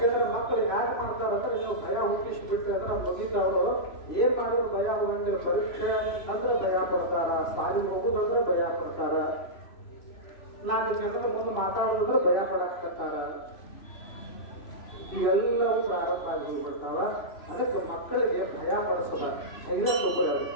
ಮಕ್ಕಳು ಯಾರು ಮಾಡ್ತಾರಂದ್ರೆ ನೀವು ಭಯ ಹುಟ್ಟಿಸ್ಬಿಟ್ರೆ ಅಂದ್ರೆ ಮುಗಿತಾವರು ಏನ್ ಮಾಡೋರು ಭಯ ಹೋಗಂಗಿಲ್ಲ. ಪರೀಕ್ಷೆ ಅಂದ್ರೆ ಭಯ ಪಡ್ತಾರ, ಸಾಲಿಗೆ ಹೋಗುದಂದ್ರೆ ಭಯ ಪಡ್ತಾರ, 4 ಜನರ ಮುಂದೆ ಮಾತಾಡೋದಂದ್ರೆ ಭಯ ಪಡಾಕ್ತಾರ. ಇವೆಲ್ಲವೂ ಪ್ರಾರಂಭ ಆಗಿ ಹೋಗ್ಬಿಡ್ತಾವ. ಅದಕ್ಕೆ ಮಕ್ಕಳಿಗೆ ಭಯ ಪಡಿಸದ, ಧೈರ್ಯ ತಗೋರು.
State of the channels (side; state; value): right; late; 3.0 ms